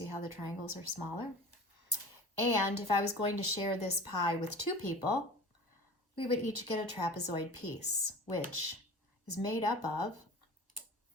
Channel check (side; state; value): both; normal; correlation 0.38